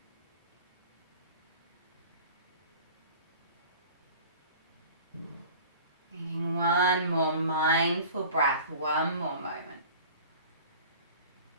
Taking one more breath one more moment.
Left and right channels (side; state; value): both; inverted; correlation -0.42